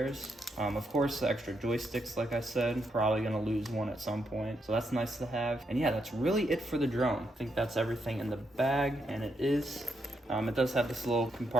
Of course, the extra joysticks, like I said, probably gonna lose one at some point, so that's nice to have. And yeah, that's really it for the drone. I think that's everything in the bag, and it is. It does have this little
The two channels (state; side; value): normal; both; correlation 0.80